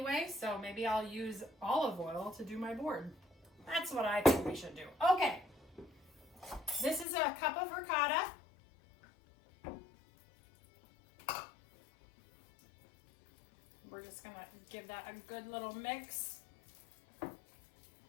so maybe I'll use olive oil to do my board. That's what I think we should do. Okay, this is a cup of ricotta. We're just gonna give that a good little mix.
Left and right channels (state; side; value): drops out; right; at 7.1 s